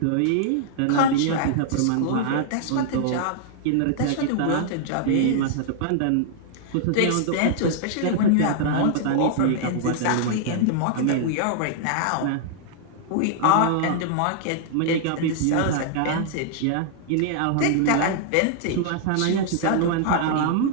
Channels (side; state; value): both; different; correlation -0.01